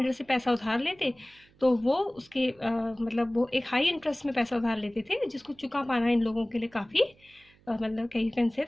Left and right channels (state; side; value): noise; right; hum, 30 dB below the sound